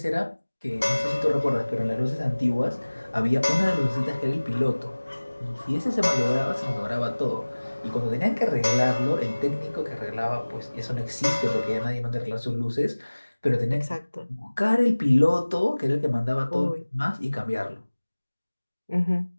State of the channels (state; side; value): inverted; both; correlation -1.00